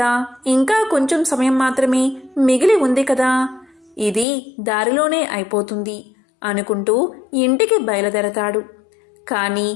ఇంకా కొంచెం సమయం మాత్రమే మిగిలి ఉంది కదా, ఇది దారిలోనే అయిపోతుంది అనుకుంటూ ఇంటికి బయలుదేరతాడు. కానీ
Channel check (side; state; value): right; drops out; at 4.2 s